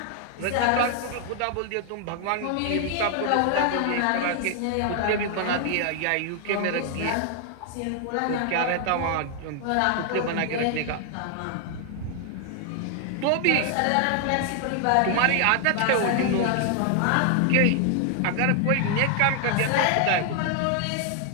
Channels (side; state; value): both; different; correlation 0.00